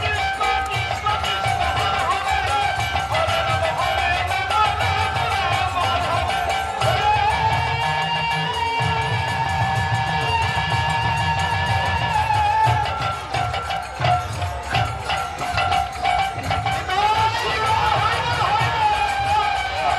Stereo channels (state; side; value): identical; both; correlation 1.00